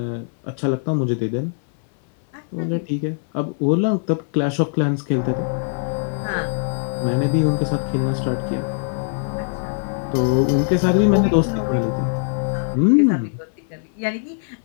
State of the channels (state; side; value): silent; right; 59 dB below the other